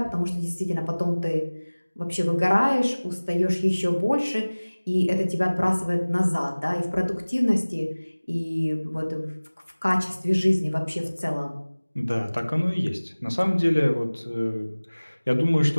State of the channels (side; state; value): both; inverted; correlation -1.00